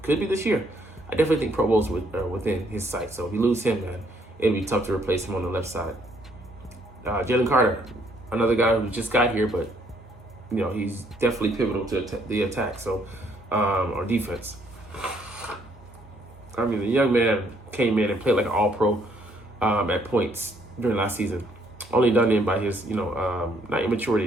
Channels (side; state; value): both; normal; correlation 0.68